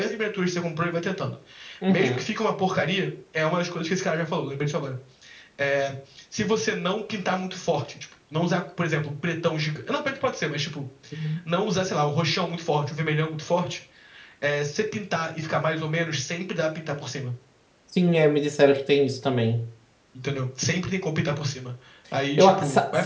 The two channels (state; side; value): identical; both; correlation 1.00